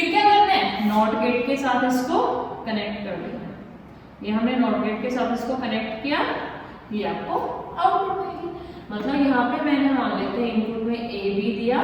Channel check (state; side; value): identical; both; correlation 1.00